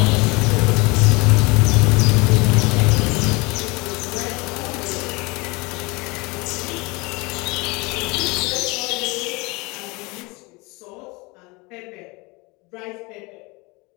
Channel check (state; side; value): quieter; right; 25.8 dB